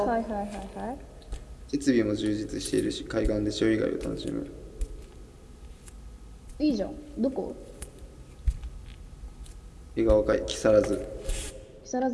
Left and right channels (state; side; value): identical; both; correlation 1.00